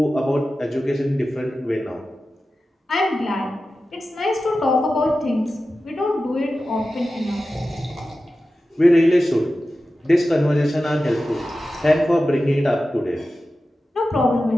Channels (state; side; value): normal; both; correlation 0.94